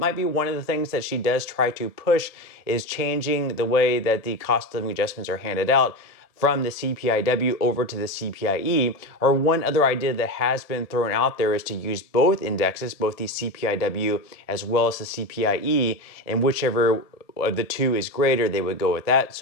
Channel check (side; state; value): right; late; 1.7 ms